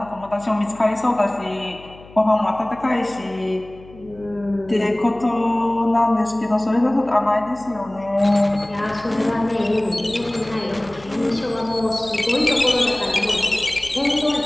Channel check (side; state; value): left; noise; hum, 21 dB below the sound